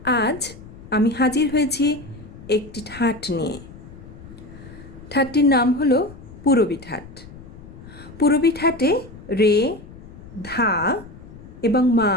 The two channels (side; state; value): left; noise; rumble, 17 dB below the sound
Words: আজ আমি হাজির হয়েছি একটি ঠাট নিয়ে। ঠাটটির নাম হলো পূরবী ঠাট। পূরবী ঠাটে রে, ধা এবং মা